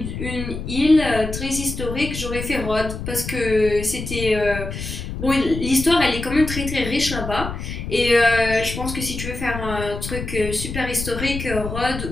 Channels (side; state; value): left; noise; rumble, 7 dB below the sound